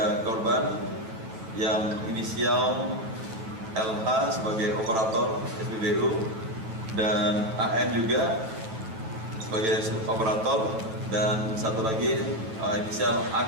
korban yang inisial LH sebagai operator SPBU dan AM juga sebagai operator, dan satu lagi inisial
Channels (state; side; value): late; left; 9.0 ms